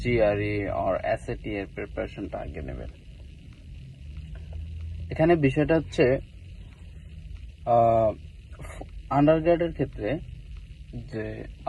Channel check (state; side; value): identical; both; correlation 1.00